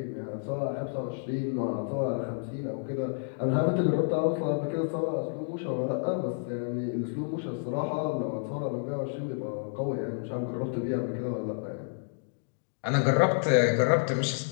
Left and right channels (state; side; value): silent; right; digital silence